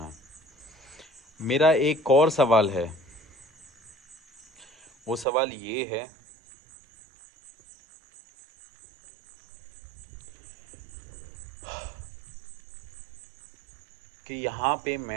मेरा एक और सवाल है, वो सवाल ये है कि यहाँ पे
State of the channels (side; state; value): left; drops out; at 5.2 s